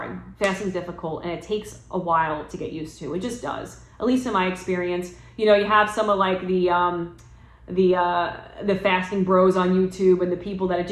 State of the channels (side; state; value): both; identical; correlation 1.00